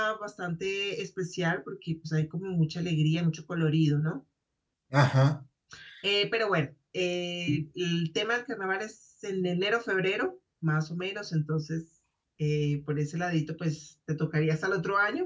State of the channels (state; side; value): identical; both; correlation 1.00